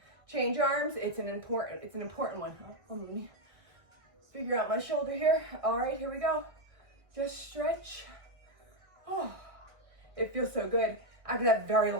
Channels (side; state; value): left; late; 1.4 ms